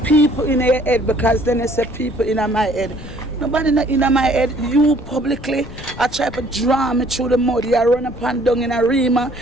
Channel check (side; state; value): left; noise; rumble, 15 dB below the sound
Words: people in your head, because then they say people in my head. Nobody in my head. You publicly I try to draw me through the mud. You run up and down in a Rima,